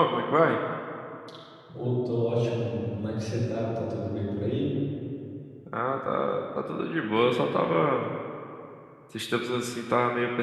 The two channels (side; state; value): both; identical; correlation 1.00